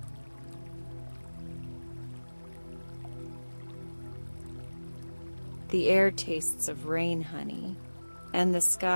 The air tastes of rain honey, and the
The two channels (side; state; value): both; inverted; correlation -1.00